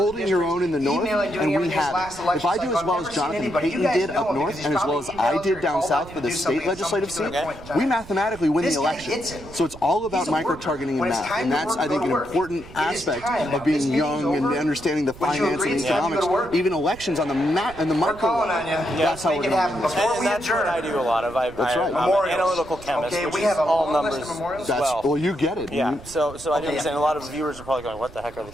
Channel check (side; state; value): right; noise; rumble, 18 dB below the sound